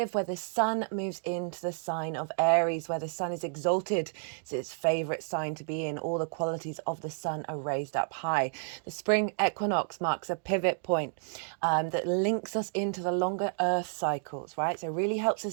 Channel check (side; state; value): left; silent; 57 dB below the other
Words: where the sun moves into the sign of Aries, where the sun is exalted. It's its favorite sign to be in. All the qualities of the sun are raised up high. The spring equinox marks a pivot point that links us into the longer earth cycles, right? So it really helps